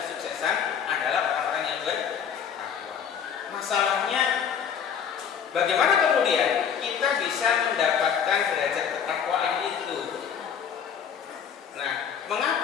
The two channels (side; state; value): right; quieter; 7.7 dB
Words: adalah orang-orang yang bertakwa. Masalahnya bagaimana kemudian kita bisa mendapatkan derajat ketakwaan itu? Nah,